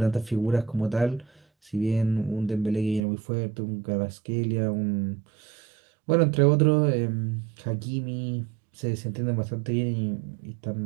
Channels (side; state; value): left; drops out; at 3.0 s